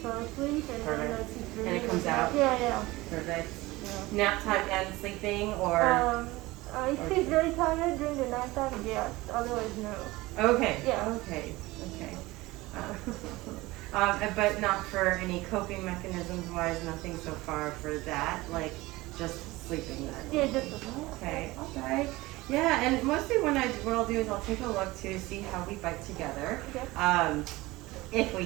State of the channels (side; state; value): left; quieter; 20.1 dB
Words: asleep and Perfect. And it comes out? Yeah. Perfect. Yeah. Nap time and sleeping, or? If she's very tired during the night time, yes. Otherwise, no. Okay. Yeah. Okay. But not for any coping mechanisms wise, nothing so far for that, like just sleeping then? Yeah, just sleeping. Okay. Yeah, and mostly what I'll do is I'll take a look to see how we bite together. Okay. If we